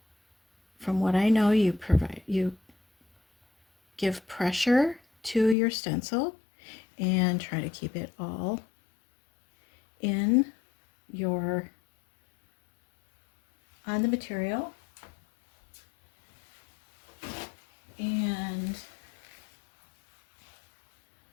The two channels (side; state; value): right; drops out; at 5.6 s